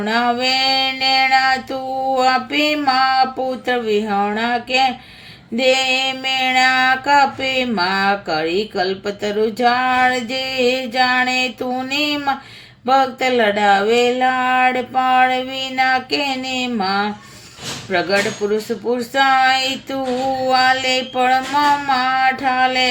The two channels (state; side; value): identical; both; correlation 1.00